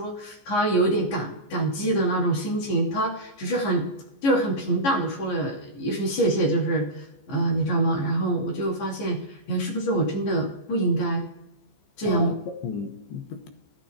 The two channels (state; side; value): late; right; 15 ms